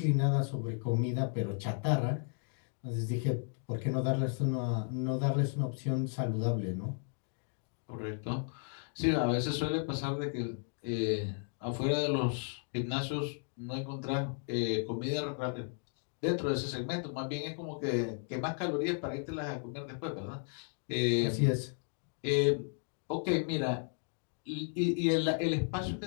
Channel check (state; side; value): silent; right; 55 dB below the other